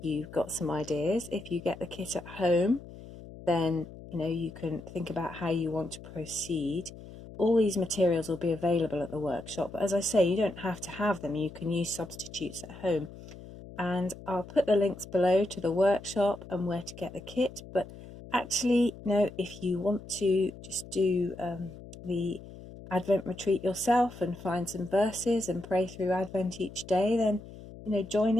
you've got some ideas. If you get the kit at home, then you can think about how you want to proceed. All these materials will be available at the workshop, but as I say, you don't have to have them. You can use substitutes at home. And I'll put the links below to the workshop and where to get the kit. But actually, if you want to just do the Advent retreat yourself and find some verses and pray through Advent each day, then join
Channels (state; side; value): noise; left; hum, 16 dB below the sound